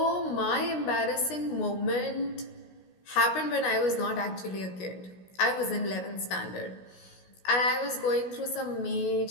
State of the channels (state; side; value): late; right; 16 ms